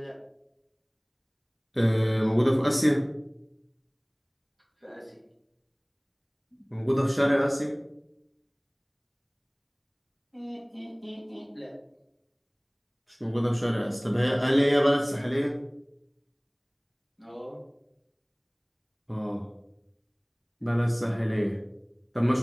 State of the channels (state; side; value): identical; both; correlation 1.00